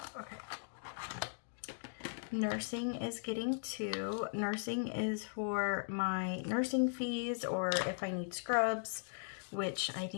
Okay. Nursing is getting 2. Nursing is for my nursing fees or if I need scrubs, which I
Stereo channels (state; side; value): silent; right; digital silence